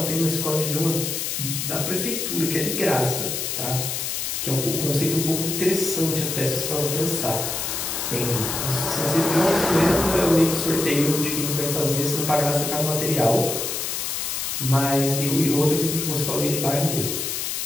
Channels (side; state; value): left; noise; hiss, 2 dB below the sound